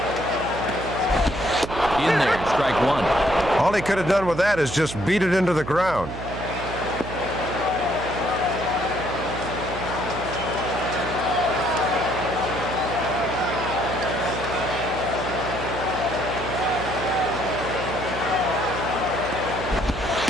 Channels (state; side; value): noise; right; hum, 9 dB below the sound